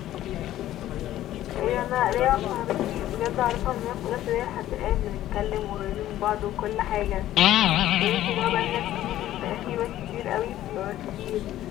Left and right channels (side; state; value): right; quieter; 13.5 dB